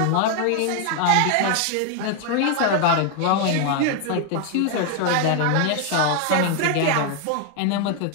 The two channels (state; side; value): different; both; correlation 0.01